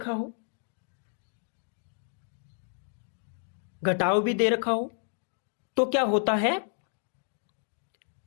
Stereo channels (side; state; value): right; silent; digital silence